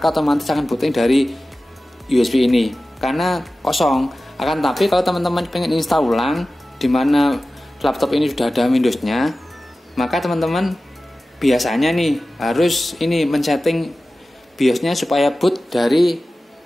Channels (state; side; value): normal; both; correlation 0.95